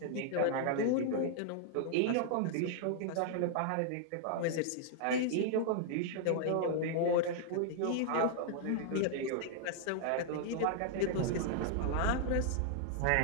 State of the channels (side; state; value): both; different; correlation -0.01